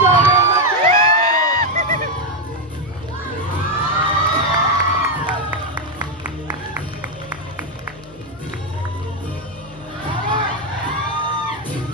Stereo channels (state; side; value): normal; both; correlation 0.04